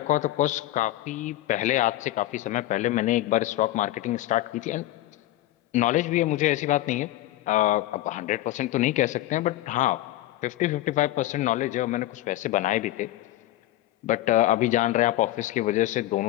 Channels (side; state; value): right; quieter; 15.5 dB